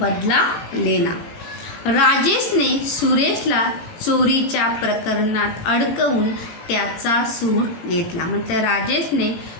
लेना। राजेशने सुरेशला चोरीच्या प्रकरणात अडकवून त्याचा सूड घेतला, मतलब राजेश ने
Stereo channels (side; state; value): right; late; 18 ms